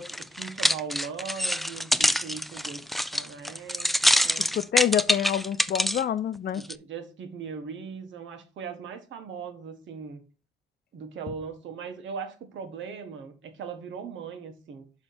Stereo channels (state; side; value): normal; both; correlation 0.73